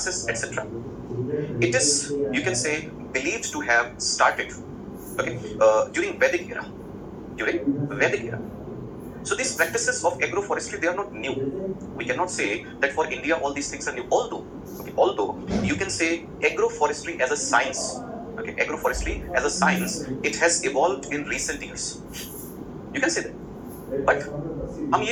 etc. It is, you can say, believed to have started, okay, during Vedic era. During Vedic era. So these practices of agroforestry, they are not new. We cannot say that for India all these things are new. Although you can say agroforestry as a science, okay, agroforestry as a science, it has evolved in recent years. You can say that. But हम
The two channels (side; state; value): both; identical; correlation 1.00